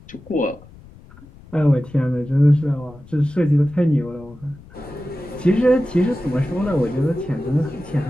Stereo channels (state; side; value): noise; left; rumble, 22 dB below the sound